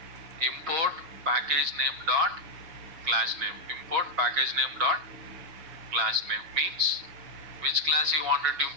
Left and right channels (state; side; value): late; left; 6.2 ms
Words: Import package name dot class name. Import package name dot class name means which class you wanted to